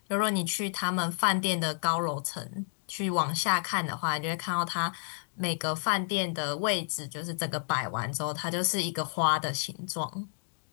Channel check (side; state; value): right; silent; digital silence